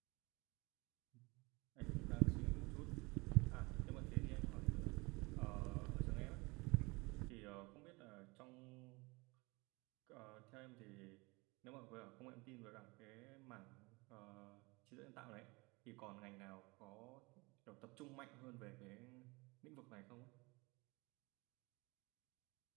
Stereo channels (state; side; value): quieter; left; 25.6 dB